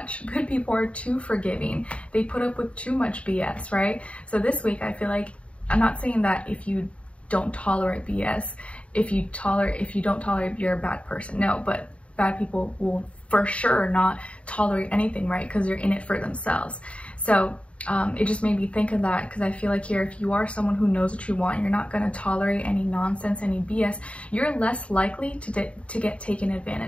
Good people are too forgiving. They put up with too much BS, right? So this week, I feel like, I'm not saying that if you don't tolerate BS, if you don't tolerate, you're a bad person. No, but bad people will for sure not tolerate anything, right? Because they're in it for themselves. So it just made me think of that, because I feel like here, if you are someone who knows what you want, you're not going to tolerate any nonsense, any BS, you're less likely to get taken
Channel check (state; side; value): late; right; 0.062 ms